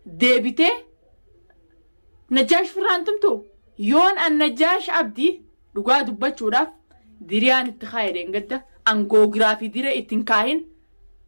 deebitee najjaash firaan tumtu yoon an najjaash abdii dhugaa dubbachuudhaaf diriyaan itti kaayedeen gadda angoogiraafii diree ittiin kaahin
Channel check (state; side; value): inverted; both; correlation -1.00